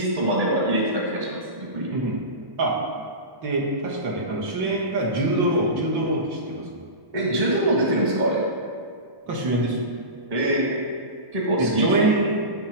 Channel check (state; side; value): late; left; 1.1 ms